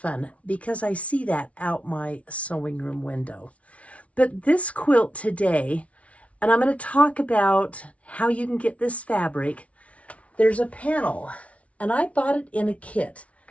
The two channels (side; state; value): right; late; 0.064 ms